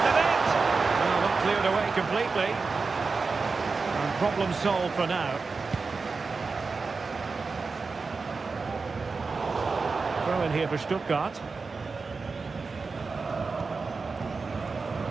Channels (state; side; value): quieter; left; 4.4 dB